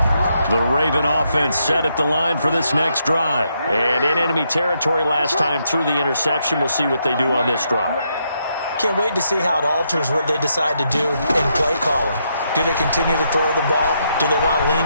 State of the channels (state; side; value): inverted; both; correlation -0.78